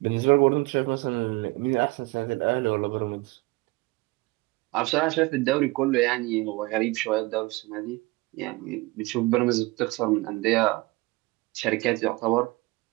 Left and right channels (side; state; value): left; quieter; 23.1 dB